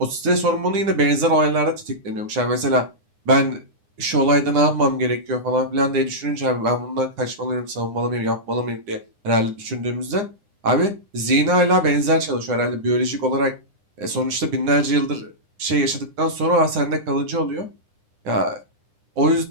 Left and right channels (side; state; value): left; late; 9.8 ms